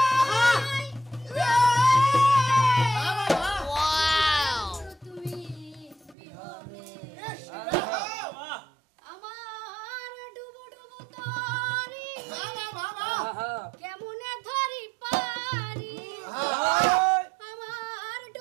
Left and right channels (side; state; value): left; drops out; at 6.2 s